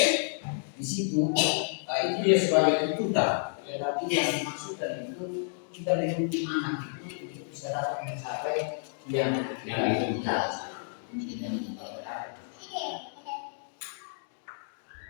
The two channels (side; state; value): right; silent; digital silence